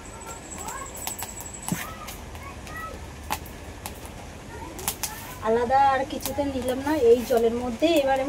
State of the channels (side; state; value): both; identical; correlation 1.00